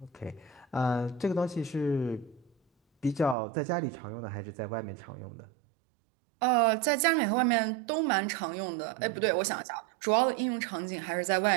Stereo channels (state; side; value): drops out; left; at 3.4 s